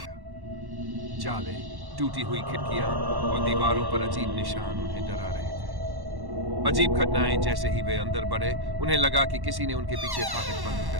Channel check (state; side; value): late; left; 1.1 ms